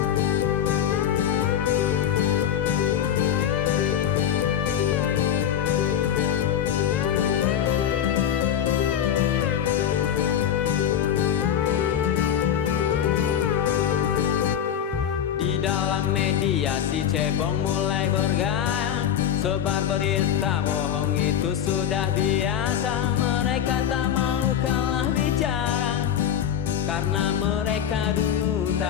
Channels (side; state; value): right; quieter; 9.5 dB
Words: Di dalam media si cebong mulai bergaya, sebar berita bohong itu sudah biasa. Mereka tak mau kalah bicara, karena mereka dulu